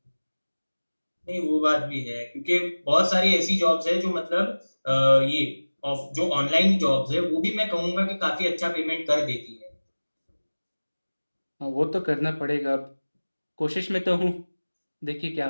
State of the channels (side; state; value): both; inverted; correlation -1.00